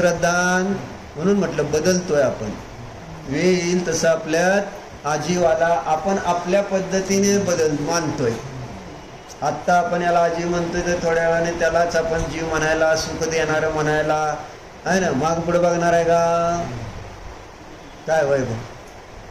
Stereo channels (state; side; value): identical; both; correlation 1.00